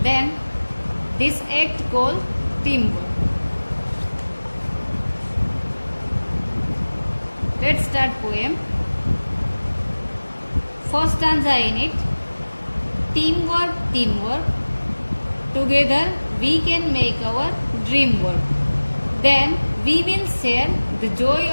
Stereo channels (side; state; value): both; inverted; correlation -1.00